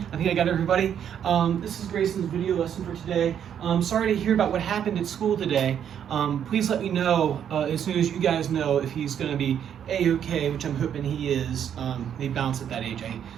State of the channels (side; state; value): left; quieter; 9.0 dB